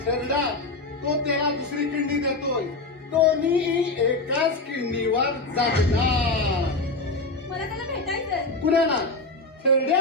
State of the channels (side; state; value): right; quieter; 3.2 dB